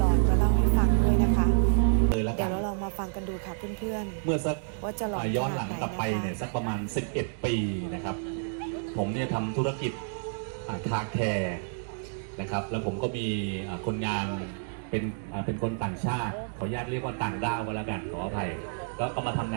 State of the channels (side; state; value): left; silent; digital silence